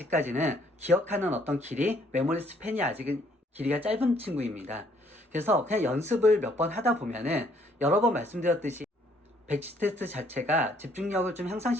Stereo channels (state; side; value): normal; both; correlation 0.65